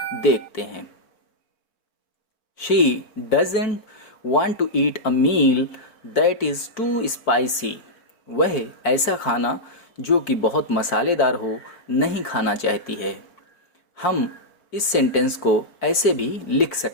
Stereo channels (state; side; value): late; right; 4.5 ms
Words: देखते हैं। She doesn't want to eat a meal that is too spicy। वह ऐसा खाना जो कि बहुत मसालेदार हो नहीं खाना चाहती है। हम इस सेंटेंस को ऐसे भी लिख